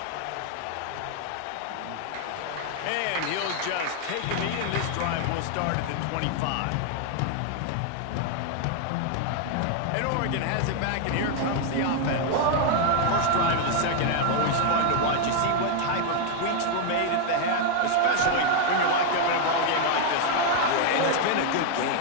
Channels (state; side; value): different; both; correlation 0.00